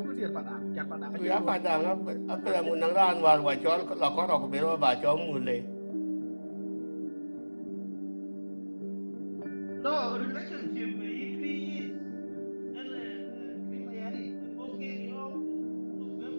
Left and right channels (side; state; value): both; inverted; correlation -1.00